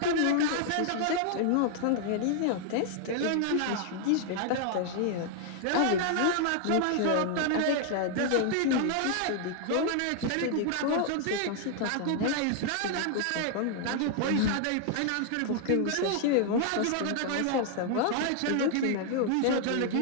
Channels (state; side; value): different; both; correlation 0.00